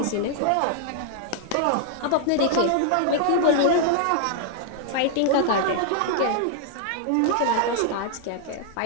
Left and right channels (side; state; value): both; different; correlation -0.01